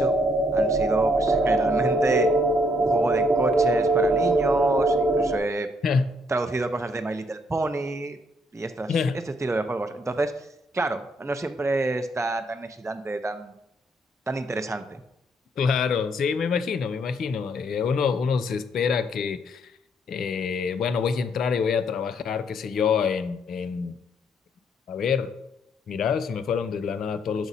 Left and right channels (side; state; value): both; normal; correlation 0.70